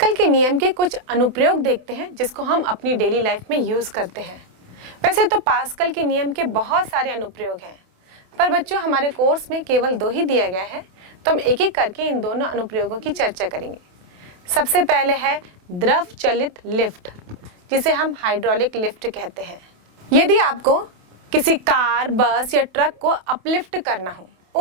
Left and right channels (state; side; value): late; left; 28 ms